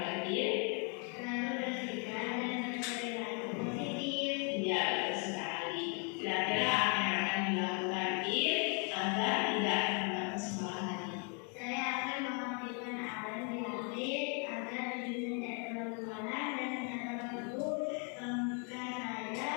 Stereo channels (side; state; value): right; quieter; 37.3 dB